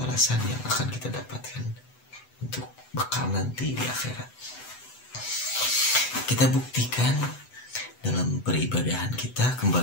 yang akan kita dapatkan untuk bekal nanti di akhirat. Kita buktikan dalam peribadahan kita,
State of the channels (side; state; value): right; late; 8.0 ms